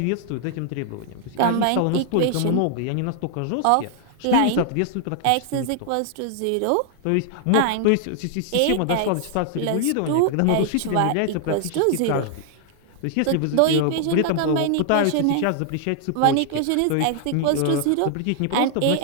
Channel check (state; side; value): different; both; correlation 0.00